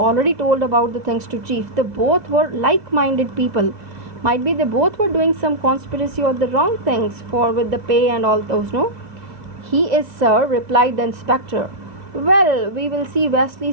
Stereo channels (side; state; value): left; late; 2.0 ms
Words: told about the things to chief. They both were like-minded people. Might be they both were doing some conspiracy or the wrong things with the pay and all those, no? He is, sir, replied the inspector. Well, we will see